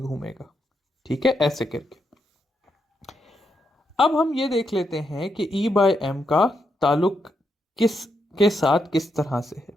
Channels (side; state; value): both; normal; correlation 0.81